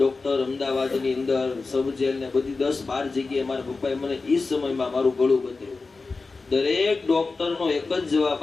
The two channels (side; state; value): right; quieter; 4.0 dB